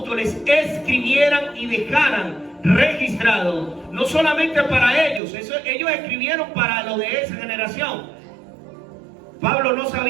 escribieran y dejaran registrado, no solamente para ellos, ellos escribieron para lo de esa generación. Pablo no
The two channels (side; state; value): left; drops out; at 5.2 s